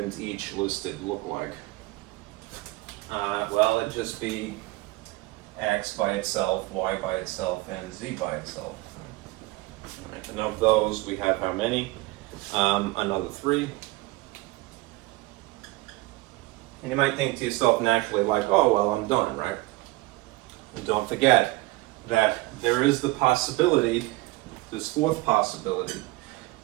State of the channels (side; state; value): left; quieter; 20.6 dB